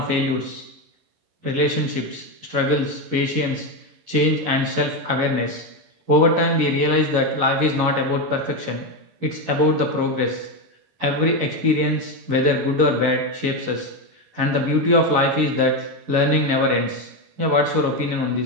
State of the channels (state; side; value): late; left; 11 ms